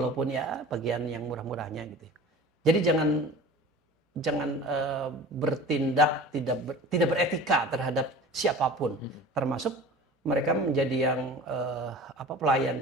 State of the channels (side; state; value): both; normal; correlation 0.39